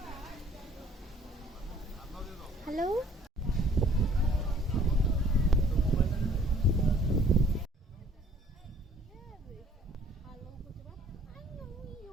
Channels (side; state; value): both; normal; correlation 0.57